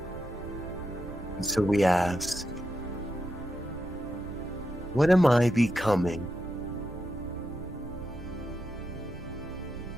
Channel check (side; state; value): right; noise; rumble, 13 dB below the sound